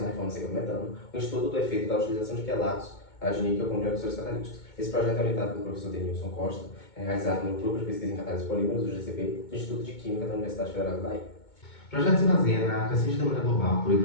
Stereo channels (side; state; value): right; late; 2.2 ms